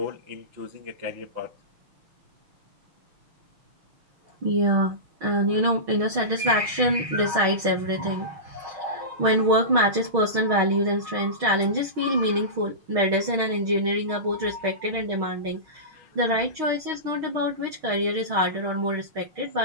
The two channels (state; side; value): late; left; 6.4 ms